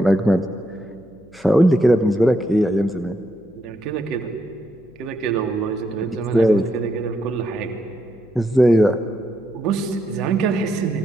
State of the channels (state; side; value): noise; left; hum, 29 dB below the sound